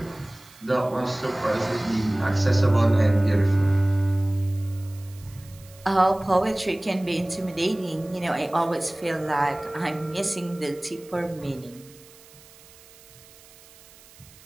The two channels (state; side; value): noise; right; hiss, 24 dB below the sound